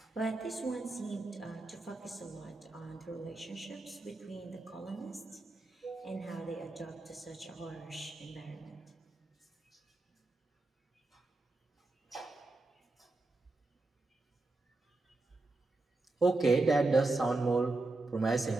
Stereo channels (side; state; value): left; quieter; 3.1 dB